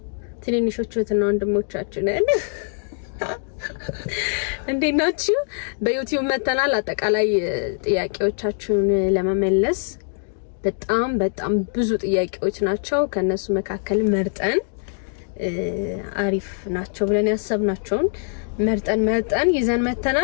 ትንንሾቹ እህትና ወንድሞቻችን እንዴት ናችሁ? በዩቲዩብ መተናል። አጠቃላይ ጥያቄዎቻችሁን ለመመለስ በጣም ብዙ ጥያቄዎች ናቸው። ከነሱ መካከል መርጠን አሪፍ ናቸው ብለን ያሰብናቸውን መርጠን ይዘን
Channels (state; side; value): silent; right; digital silence